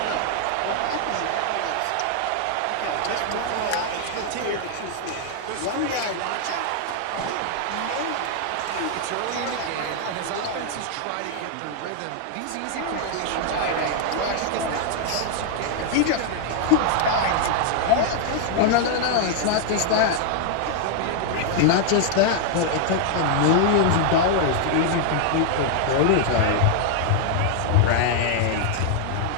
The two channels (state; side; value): different; both; correlation 0.00